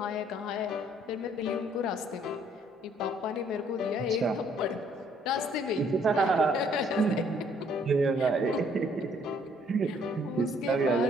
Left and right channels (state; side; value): normal; both; correlation 0.63